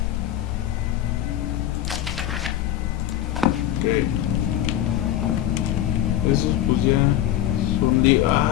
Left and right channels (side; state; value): right; quieter; 12.3 dB